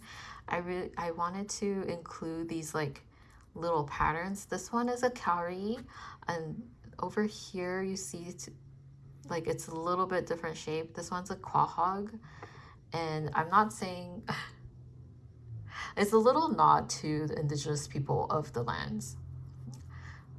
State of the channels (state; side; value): identical; both; correlation 1.00